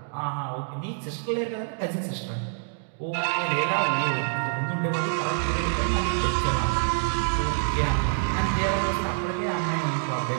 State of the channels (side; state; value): left; silent; 61 dB below the other